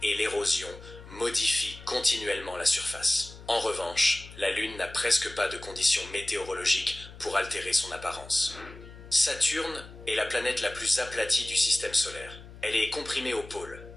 et l'érosion modifient continuellement la surface. En revanche, la Lune n'a presque pas de conditions météorologiques pour altérer son apparence. Saturne est la planète la plus aplatie du système solaire. Elle est comprimée au pôle,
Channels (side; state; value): left; noise; hum, 17 dB below the sound